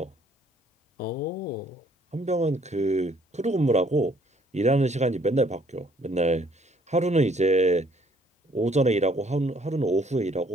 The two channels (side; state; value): both; normal; correlation 0.63